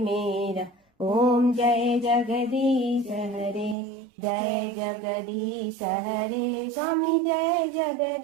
ओम जय जगदीश हरे। जय जगदीश हरे स्वामी, जय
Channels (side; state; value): left; drops out; at 3.8 s